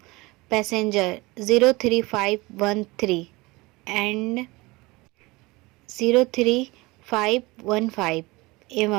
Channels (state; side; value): quieter; left; 22.8 dB